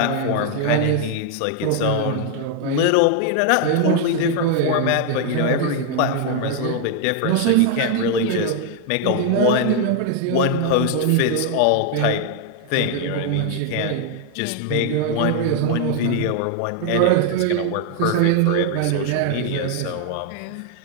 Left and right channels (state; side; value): different; both; correlation 0.00